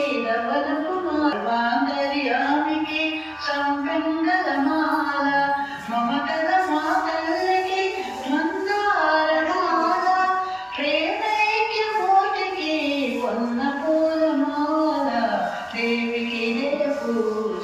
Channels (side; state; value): both; identical; correlation 1.00